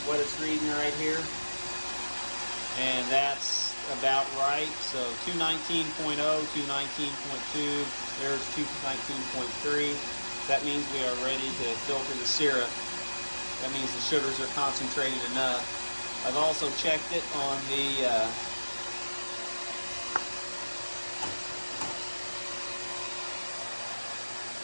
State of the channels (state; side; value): inverted; both; correlation -1.00